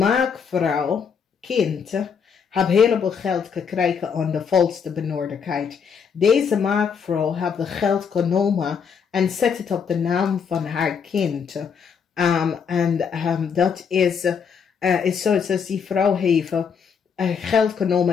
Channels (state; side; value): quieter; right; 6.6 dB